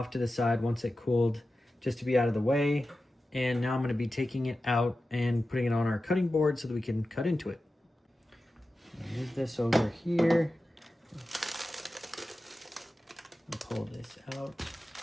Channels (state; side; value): normal; both; correlation 0.93